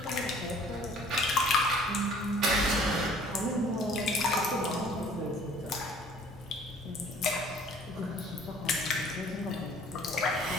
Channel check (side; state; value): both; normal; correlation 0.53